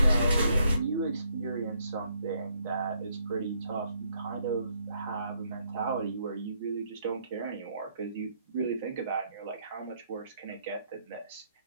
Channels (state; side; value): inverted; both; correlation -0.72